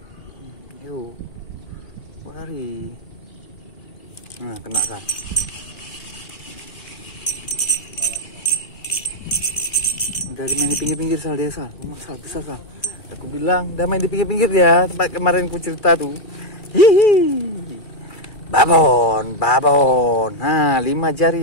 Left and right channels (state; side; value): late; right; 2.4 ms